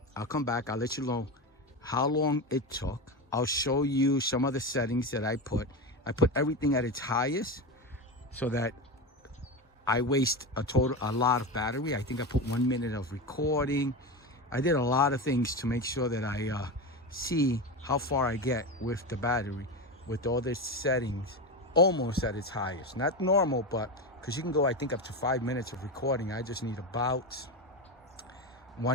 I'll come back. I'll let you know how long it took. I'll show you some of the settings that I put. I put everything at its highest so that I waste a lot of battery. I think I put 1 minute of recording. I did a lot of things to make sure that I see how far I get with the battery with all the settings almost at its highest. Not normal, but because you can go, I think, up to 5 minutes of recording. I just need about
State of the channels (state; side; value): normal; both; correlation 0.19